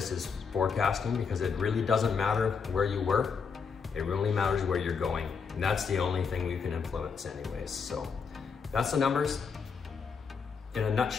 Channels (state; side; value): quieter; right; 5.8 dB